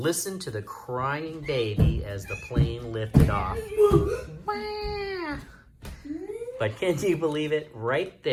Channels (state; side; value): identical; both; correlation 1.00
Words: listened to the crying baby as the plane lifted off. But can you believe it? Right